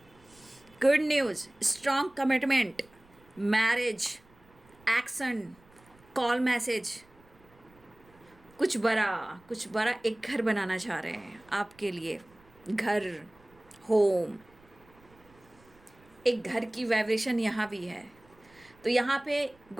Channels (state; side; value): noise; right; rumble, 28 dB below the sound